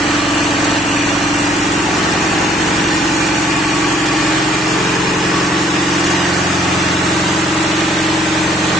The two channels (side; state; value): both; normal; correlation 0.62